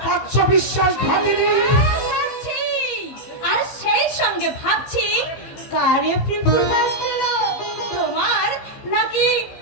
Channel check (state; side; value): late; right; 14 ms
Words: পারছ বিশ্বাস ভাবিনি। ভাবছি, আর সেই সঙ্গে ভাবছি কারে প্রপোজ দিল, তোমার নাকি